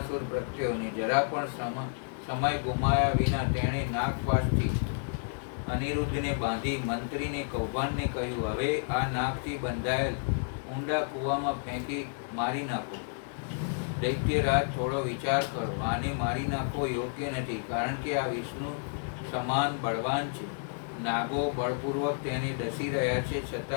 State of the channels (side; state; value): right; silent; digital silence